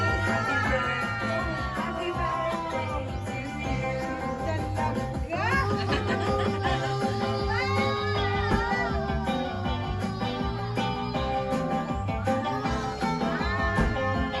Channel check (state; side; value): identical; both; correlation 1.00